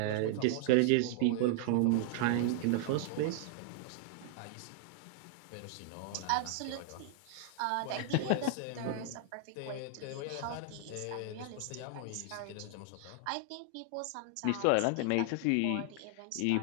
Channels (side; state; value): both; different; correlation 0.00